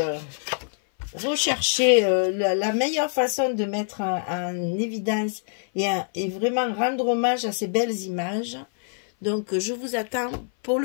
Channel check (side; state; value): right; silent; 57 dB below the other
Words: Rechercher la meilleure façon de mettre en évidence et vraiment rendre hommage à ces belles images. Donc, je vous attends pour